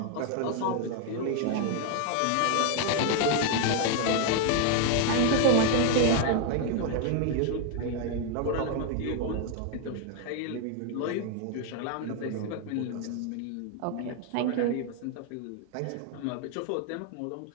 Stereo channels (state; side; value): different; both; correlation 0.01